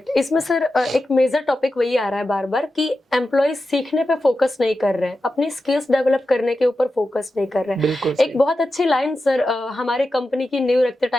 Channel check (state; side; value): normal; both; correlation 0.91